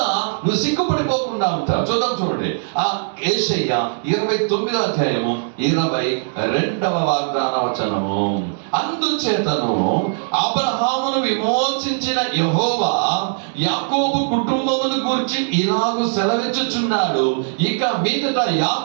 నువ్వు సిగ్గుపడిపోకుండా ఉంటావు. చూడండి ఆ యేషయ్య 29వ అధ్యాయము 22వ వాగ్దాన వచనము. అందుచేతను అబ్రహామును విమోచించిన యెహోవా యాకోబు కుటుంబమును గూర్చి ఇలాగు సెలవిచ్చుచున్నాడు, ఇక మీదట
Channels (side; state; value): left; silent; digital silence